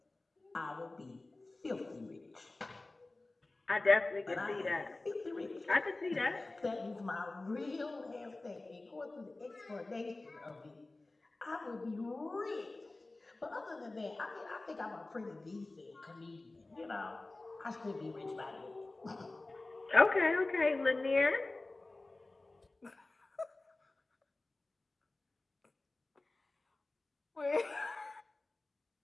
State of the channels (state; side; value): quieter; right; 3.1 dB